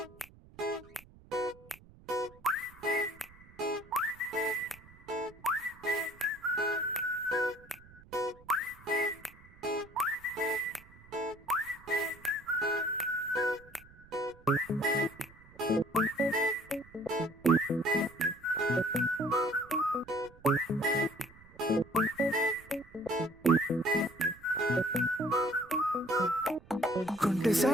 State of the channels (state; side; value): noise; right; rumble, 23 dB below the sound